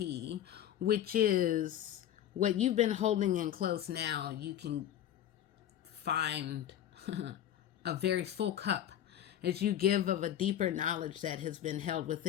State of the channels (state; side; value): quieter; right; 11.0 dB